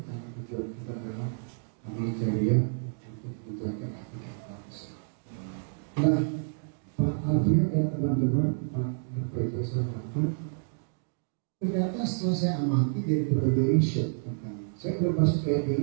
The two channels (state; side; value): silent; left; 58 dB below the other